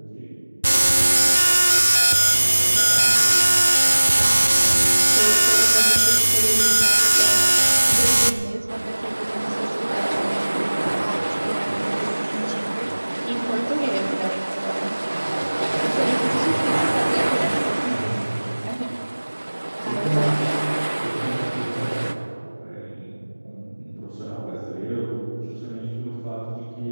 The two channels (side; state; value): both; inverted; correlation -1.00